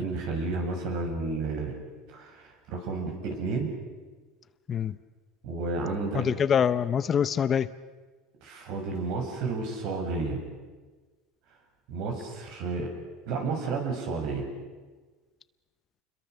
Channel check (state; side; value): normal; both; correlation 0.49